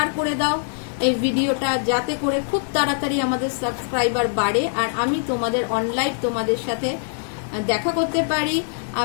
করে দাও এই ভিডিওটা, যাতে করে খুব তাড়াতাড়ি আমাদের সাবস্ক্রাইবার বাড়ে আর আমি তোমাদের অনলাইন তোমাদের সাথে দেখা করতে পারি,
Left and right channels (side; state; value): right; silent; 64 dB below the other